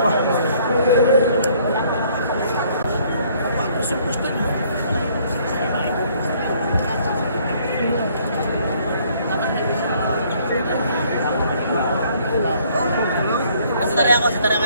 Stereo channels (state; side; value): inverted; both; correlation -0.62